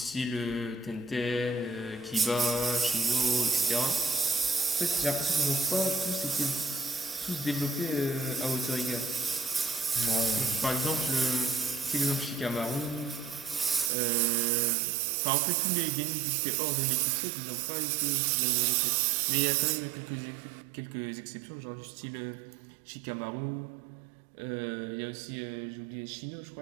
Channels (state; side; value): drops out; left; at 13.9 s